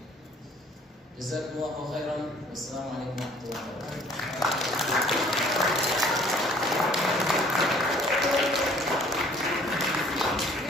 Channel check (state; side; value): normal; both; correlation 0.56